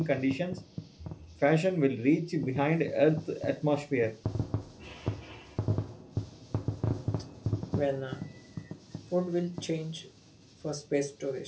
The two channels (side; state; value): both; identical; correlation 1.00